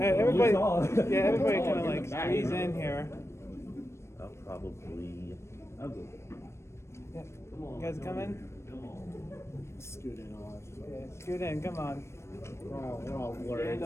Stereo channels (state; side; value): late; right; 0.13 ms